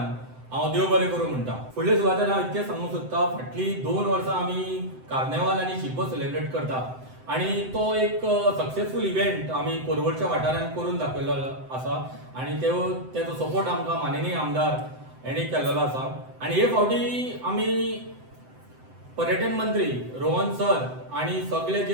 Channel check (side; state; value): left; late; 7.8 ms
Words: हांव देव बरें करूं म्हणटा. फुडले सुवातेर हांव इतकें सांगूंक सोदतां, फाटलीं 2 वर्सां आमी कार्नेवाल आनी शिगमो सेलिब्रेट करता. आनी तो एक सक्सेसफूल इव्हेंट आमी परवरच्या वाठारांत करून दाखयल्लो आसा. आनी तेजो सपोर्ट आमकां माननीय आमदार हेणी केल्लो आसा. आनी हे फावटी आमी पर्यटन मंत्री रोहन सर आनी सगळे